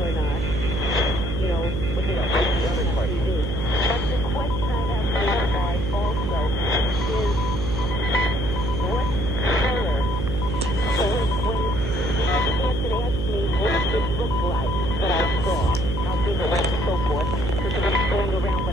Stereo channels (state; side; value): noise; right; hum, 3 dB below the sound